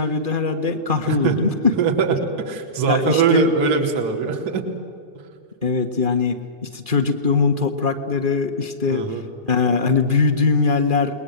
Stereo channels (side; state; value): left; late; 2.4 ms